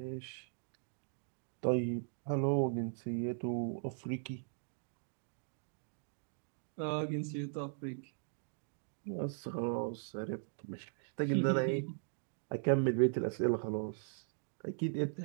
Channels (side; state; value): left; silent; digital silence